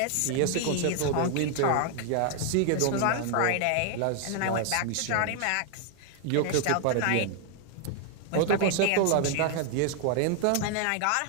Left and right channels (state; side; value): different; both; correlation 0.00